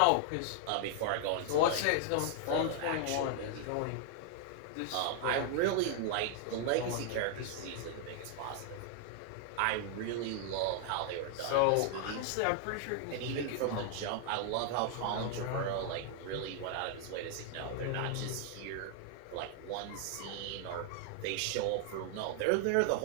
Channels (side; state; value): both; different; correlation 0.00